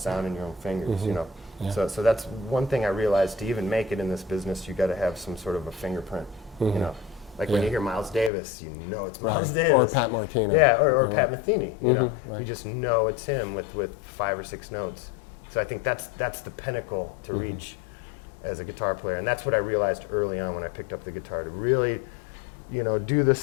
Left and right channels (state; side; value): drops out; right; at 8.3 s